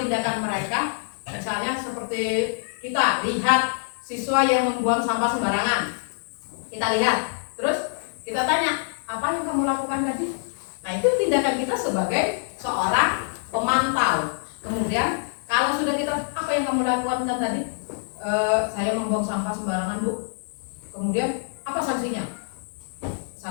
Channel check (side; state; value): right; silent; digital silence